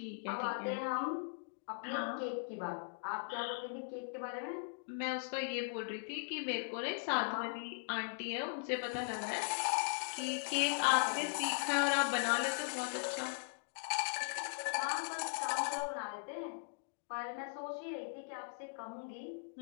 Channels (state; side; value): silent; right; digital silence